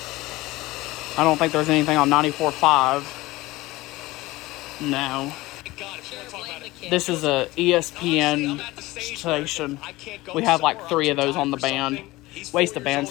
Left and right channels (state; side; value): quieter; right; 19.5 dB